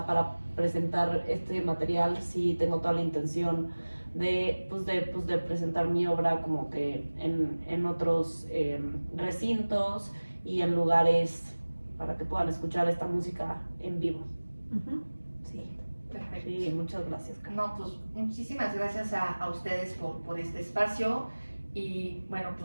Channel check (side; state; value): both; inverted; correlation -1.00